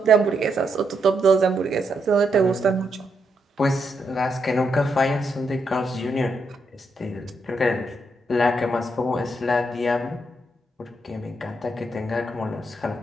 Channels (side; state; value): both; normal; correlation 0.80